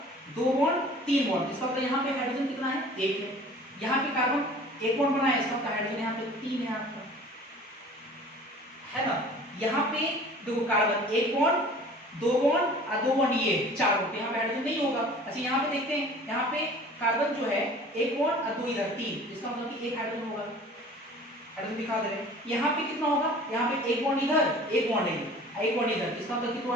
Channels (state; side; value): normal; both; correlation 0.46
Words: दो बॉन्ड तीन बॉन्ड, इसका मतलब यहाँ पे हाइड्रोजन कितना है एक है। यहाँ पे कार्बन एक बॉन्ड बनाया, इसका मतलब हाइड्रोजन यहाँ पे तीन है आपका, है ना। यहाँ पे देखो कार्बन एक बॉन्ड दो बॉन्ड और दो बॉन्ड ये चार बॉन्ड, यहाँ पे हाइड्रोजन नहीं होगा। अच्छा यहाँ पे देखते हैं, यहाँ पे कार्बन जो है एक बॉन्ड और दो इधर तीन, इसका मतलब कि एक हाइड्रोजन होगा, हाइड्रोजन दिखा दे रहे हैं। यहाँ पे कितना होगा, यहाँ पे एक बॉन्ड इधर एक बॉन्ड एक बॉन्ड इधर, इसका मतलब कि दो